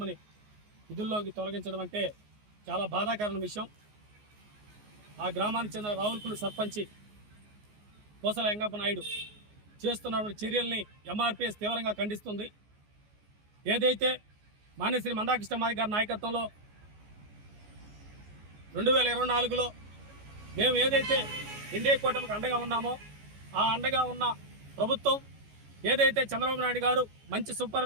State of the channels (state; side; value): late; left; 14 ms